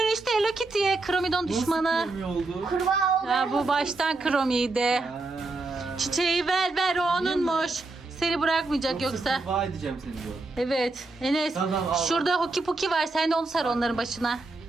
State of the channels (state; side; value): quieter; left; 3.3 dB